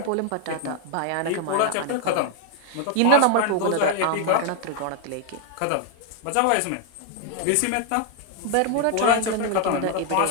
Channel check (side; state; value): both; different; correlation 0.00